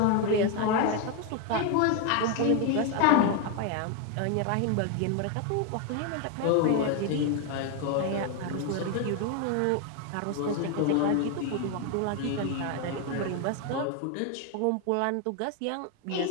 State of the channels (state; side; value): different; both; correlation 0.01